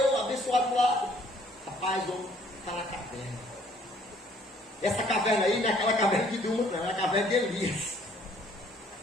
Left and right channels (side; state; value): both; normal; correlation 0.61